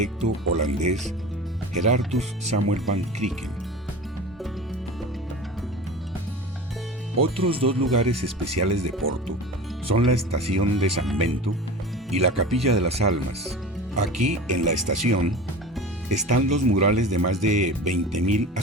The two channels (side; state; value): both; normal; correlation 0.34